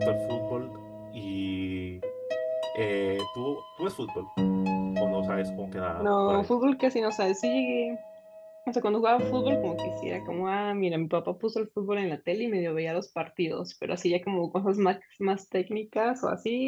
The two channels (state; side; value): identical; both; correlation 1.00